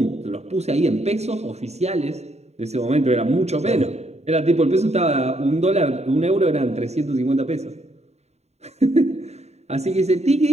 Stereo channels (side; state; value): left; late; 0.32 ms